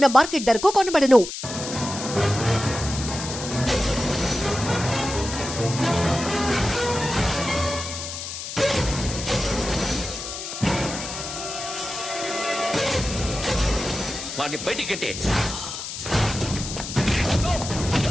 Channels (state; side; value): noise; left; hiss, 7 dB below the sound